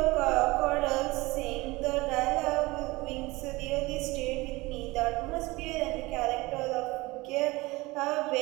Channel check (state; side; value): quieter; left; 21.8 dB